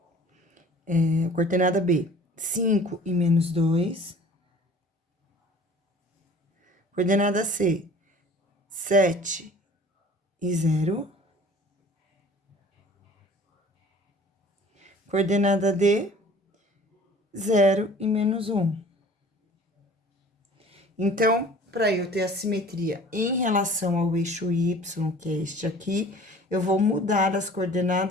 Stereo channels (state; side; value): normal; both; correlation 0.48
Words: coordenada B, 5 e menos 2. Coordenada C, 7 e 0. Coordenada D, 0 e menos 1. Então, para eu ter a simetria em relação ao eixo Y, que é este aqui, eu vou mudar as